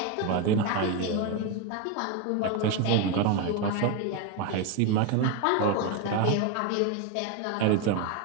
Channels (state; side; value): different; both; correlation 0.03